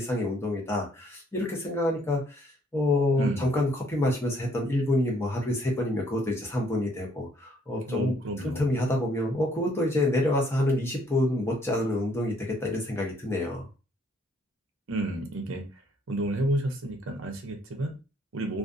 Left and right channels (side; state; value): both; normal; correlation 0.66